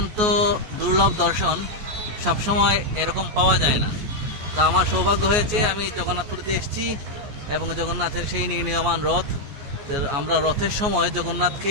দুর্লভ দর্শন, সবসময় এরকম পাওয়া যায় না। তো আমার সৌভাগ্য হয়েছে, আমি জগন্নাথপুরীতে এসেছি এবং জগন্নাথের সেই নির্ণীয়মান রথ। আমরা রথের সময় জগন্নাথকে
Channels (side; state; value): left; late; 14 ms